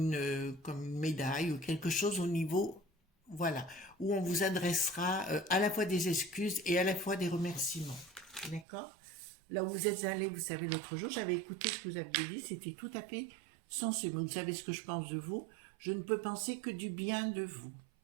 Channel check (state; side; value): drops out; left; at 8.7 s